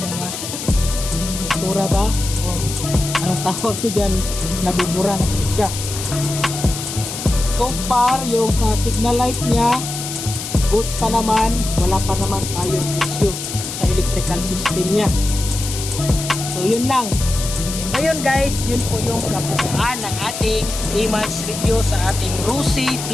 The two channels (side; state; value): left; noise; hiss, 7 dB below the sound